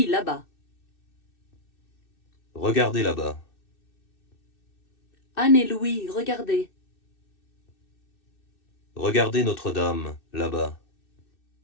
là-bas. Regardez là-bas. Anne et Louis, regardez. Regardez Notre-Dame, là-bas.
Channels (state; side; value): late; right; 2.6 ms